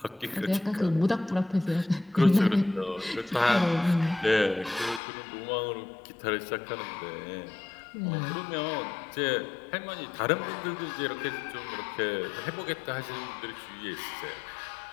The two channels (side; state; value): right; drops out; at 5.0 s